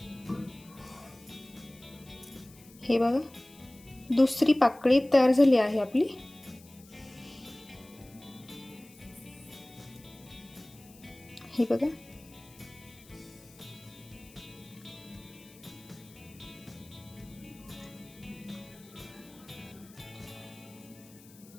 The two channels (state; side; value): noise; left; hiss, 23 dB below the sound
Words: हे बघा दुसरी पाकळी तयार झाली आहे आपली। हे बघा